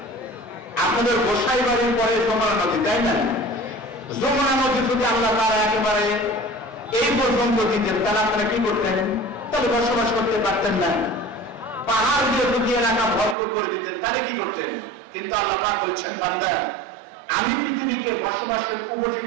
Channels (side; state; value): left; drops out; at 13.4 s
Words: আপনাদের গোসাই বাড়ির পরে যমুনা নদী, তাই না? যমুনা নদী যদি আল্লাহ তারা একেবারে এই পর্যন্ত দিতেন, তাহলে আপনারা কি করতেন? তাহলে বসবাস করতে পারতেন না। পাহাড় দিয়ে যদি এলাকা ভরপুর করে দিতেন, তাহলে কি করতেন? কিন্তু আল্লাহ পাক বলছেন, বান্দা আমি পৃথিবীকে বসবাসের